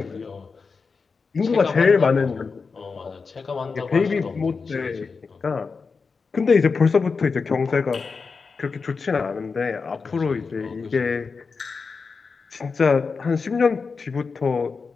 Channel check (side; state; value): right; quieter; 4.9 dB